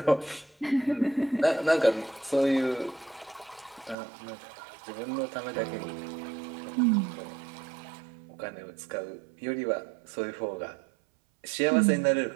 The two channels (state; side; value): drops out; left; at 4.0 s